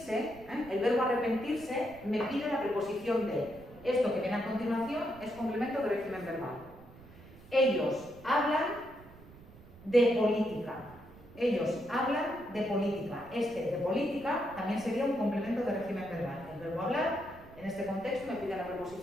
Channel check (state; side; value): noise; right; rumble, 20 dB below the sound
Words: el verbo arrepentirse me pide la preposición de. Esto que viene a continuación es complemento de régimen verbal. Ellos hablan de política. Ellos hablan de política. Este de política también sería un complemento de régimen verbal. El verbo hablar, en este contexto, me pide la